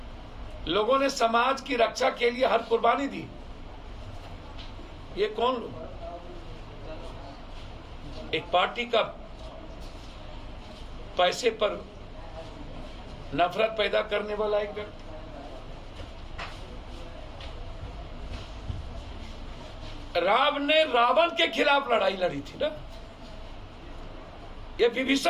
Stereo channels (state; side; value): identical; both; correlation 1.00